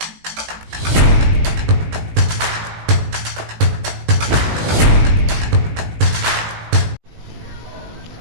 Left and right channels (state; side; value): late; left; 18 ms